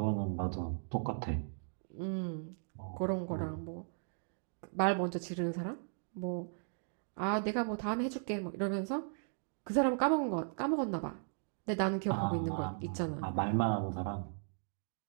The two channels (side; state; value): left; silent; digital silence